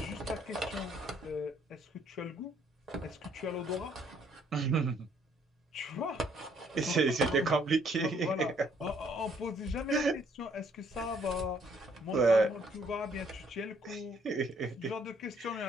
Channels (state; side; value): normal; both; correlation 0.65